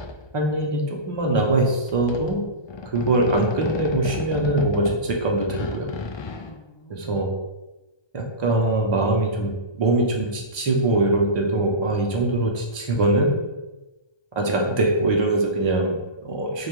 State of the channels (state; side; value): late; right; 1.2 ms